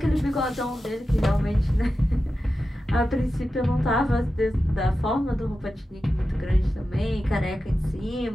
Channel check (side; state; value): both; normal; correlation 0.92